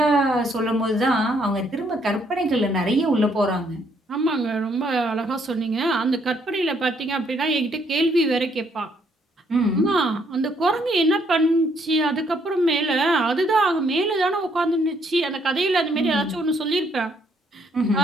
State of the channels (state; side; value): normal; both; correlation 0.69